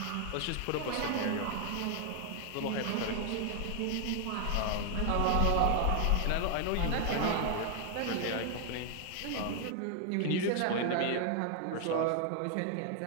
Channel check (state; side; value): different; both; correlation 0.00